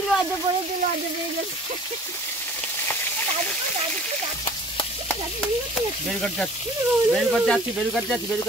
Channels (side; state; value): both; normal; correlation 0.48